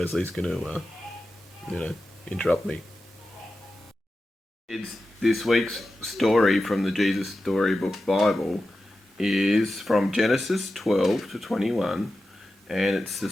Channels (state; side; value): normal; both; correlation 0.92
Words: going to, interrupt me. This week's story from the Jesus Storybook Bible is from Genesis 12 to 21, and it's the